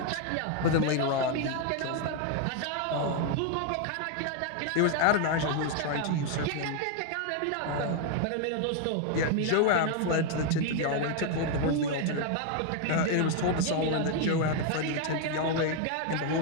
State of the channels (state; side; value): different; both; correlation 0.00